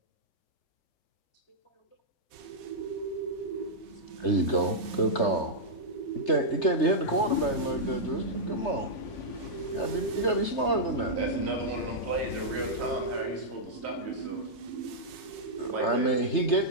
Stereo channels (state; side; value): late; right; 3.3 ms